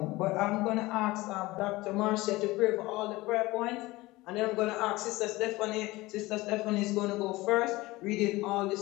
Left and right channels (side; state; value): right; quieter; 20.1 dB